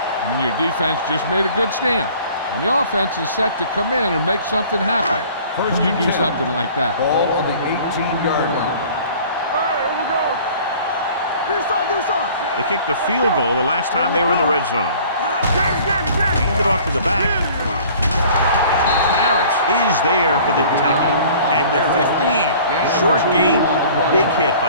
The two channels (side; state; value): both; inverted; correlation -0.49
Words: I mean, your defense just made a good stand. And the offense is set to come in and make something happen. First you do something like that. Ball on the 18-yard line. Here we go. Do something. They kicked the field goal the last time they were in the red zone. Get it. Hand it off to the back. Harris is there for the tackle at the 15. Short gain, big hit